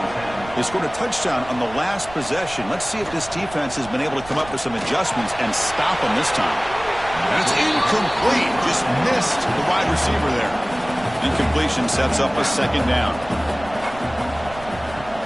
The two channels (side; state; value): right; noise; rumble, 17 dB below the sound